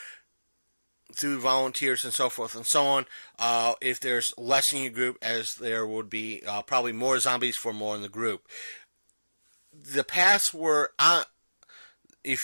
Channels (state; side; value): inverted; both; correlation -1.00